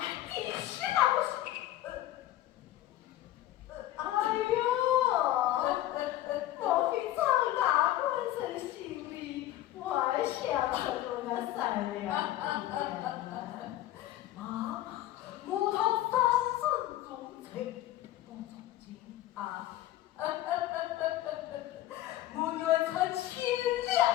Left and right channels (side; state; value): right; quieter; 14.4 dB